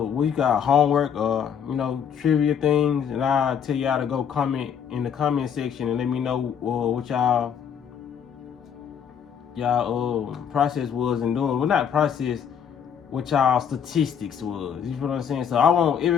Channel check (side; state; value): right; quieter; 8.0 dB